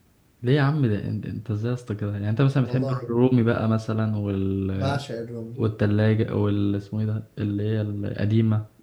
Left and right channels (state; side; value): identical; both; correlation 1.00